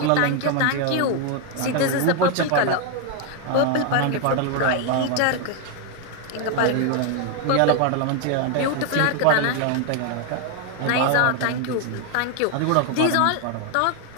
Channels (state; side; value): different; both; correlation 0.01